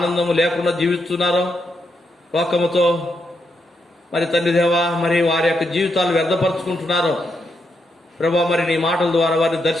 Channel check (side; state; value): both; normal; correlation 0.81